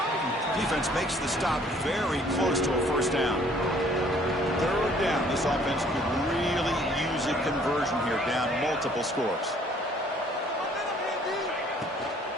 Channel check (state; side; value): normal; both; correlation 0.59